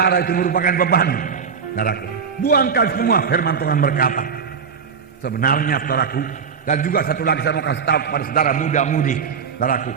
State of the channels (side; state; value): left; quieter; 6.3 dB